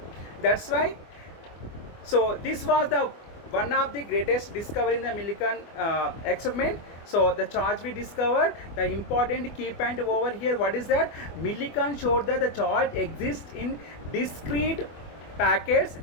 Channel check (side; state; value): right; late; 24 ms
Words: That's why. So this was the one of the greatest discovery in the Millikan experiment. So the charge we discovered, the important key point over here, what is that? Millikan showed that the charge exists in discrete packets.